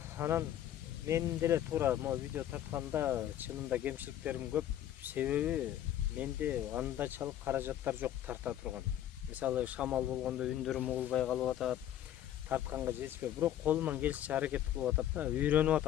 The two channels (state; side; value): quieter; right; 11.5 dB